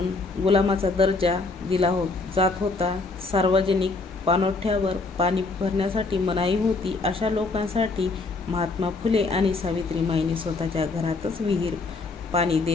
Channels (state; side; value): quieter; right; 3.7 dB